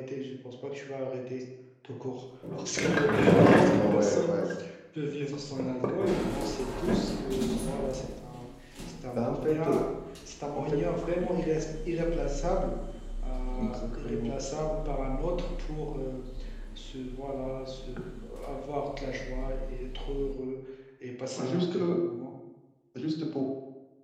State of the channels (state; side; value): identical; both; correlation 1.00